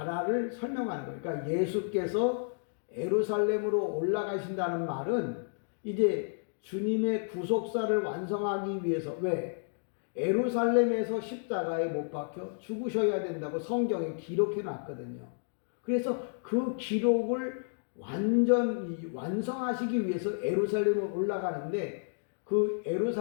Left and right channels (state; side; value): silent; right; digital silence